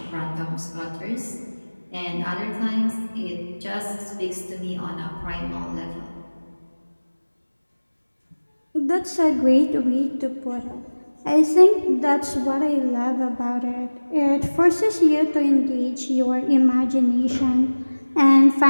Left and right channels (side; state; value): both; inverted; correlation -1.00